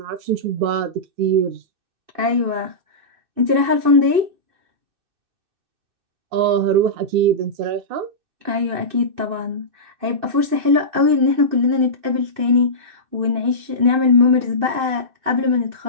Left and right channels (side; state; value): left; late; 2.6 ms